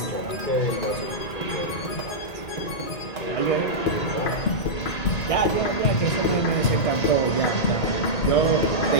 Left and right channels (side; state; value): right; late; 1.9 ms